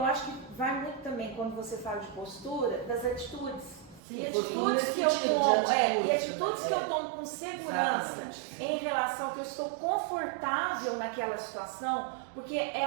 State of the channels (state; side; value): drops out; left; at 4.0 s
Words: acho que vai muito também, quando você fala de postura, das atitudes. Sim, e atitudes que eu tomo, e atitudes que eu tomo com segurança. Exatamente. Em relação que eu estou confortável naquela situação, porque é